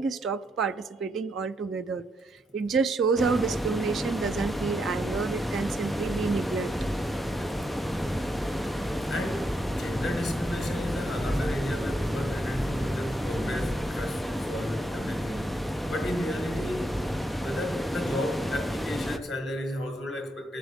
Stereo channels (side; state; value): both; normal; correlation 0.79